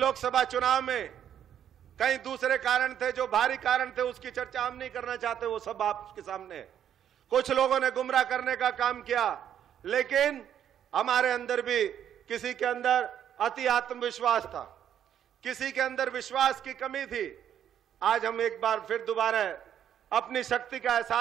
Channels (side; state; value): left; quieter; 9.7 dB